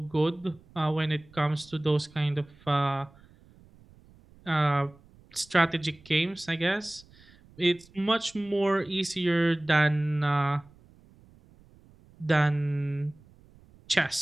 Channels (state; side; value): noise; right; rumble, 27 dB below the sound